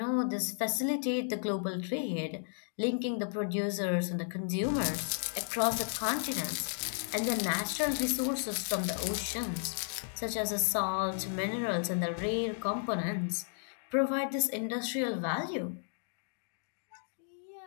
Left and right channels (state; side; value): silent; right; digital silence